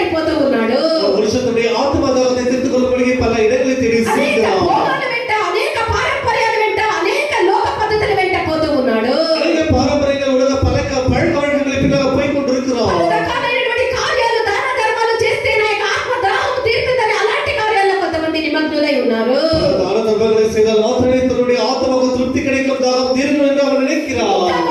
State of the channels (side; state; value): both; identical; correlation 1.00